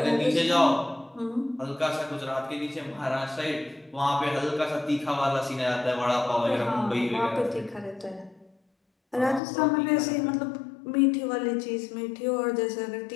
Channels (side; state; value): right; drops out; at 9.4 s